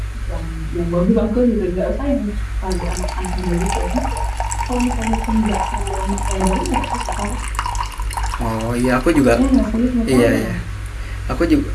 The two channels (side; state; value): both; identical; correlation 1.00